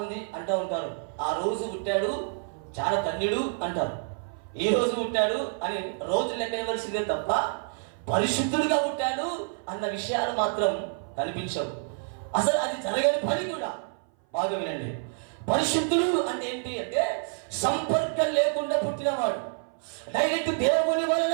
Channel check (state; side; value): silent; left; 56 dB below the other